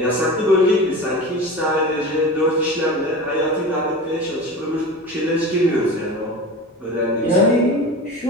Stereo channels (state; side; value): normal; both; correlation 0.31